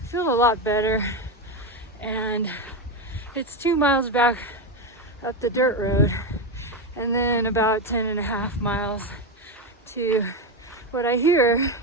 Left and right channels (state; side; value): normal; both; correlation 0.12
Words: feel a lot better. And it's 2 miles back up the dirt road, and then about 10.5 miles to what I hear